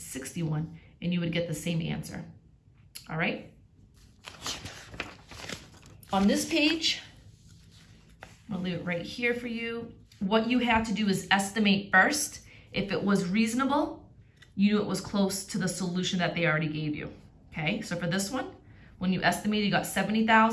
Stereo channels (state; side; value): identical; both; correlation 1.00